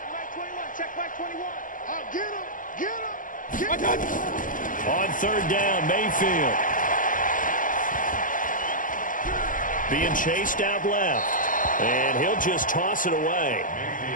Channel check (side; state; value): right; late; 0.38 ms